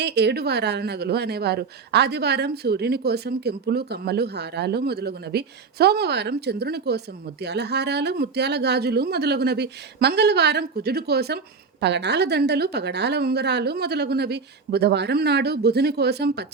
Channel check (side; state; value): left; quieter; 5.0 dB